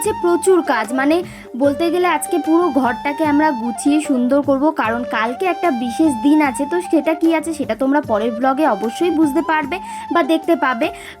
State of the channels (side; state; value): both; identical; correlation 1.00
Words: প্রচুর কাজ, মানে বলতে গেলে আজকে পুরো ঘরটাকে আমরা গুছিয়ে সুন্দর করব, কারণ কালকে একটা বিশেষ দিন আছে। তো সেটা কি আছে সেটা তোমরা পরের ব্লগে অবশ্যই বুঝতে পারবে বা দেখতে পাবে।